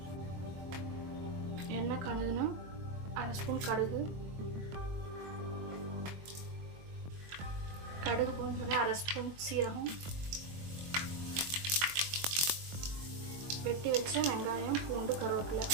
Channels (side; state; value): left; late; 22 ms